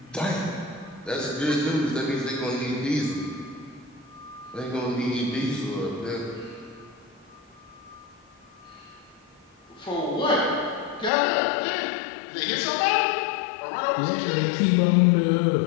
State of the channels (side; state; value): right; drops out; at 11.1 s